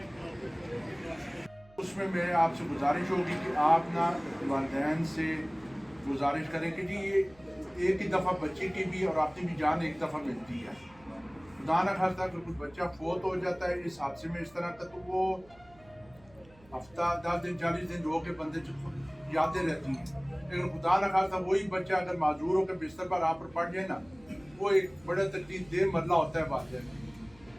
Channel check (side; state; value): right; noise; hum, 27 dB below the sound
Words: उसमें मेरे आपसे गुजारिश होगी कि आप ना वालिदैन से गुजारिश करें कि जी ये एक ही दफ़ा बच्चे की भी और आपकी भी जान एक दफ़ा मिलती है। खुदा न खास्ता अगर कुछ बच्चा फोत हो जाता है इस हादसे में इस तरह का, तो वो हफ्ता 10 दिन 40 दिन रो के बंदे यादें रहती हैं। लेकिन खुदा न खास्ता वही बच्चा अगर माजूर होकर बिस्तर पर आप पर पड़ जाए ना, वो एक बड़ा तकलीफ दे मरला होता है वालिदैन।